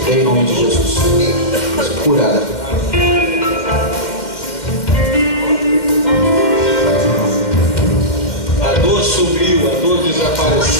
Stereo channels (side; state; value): right; late; 2.1 ms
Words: Em nome de Jesus. Curada. A dor sumiu, a dor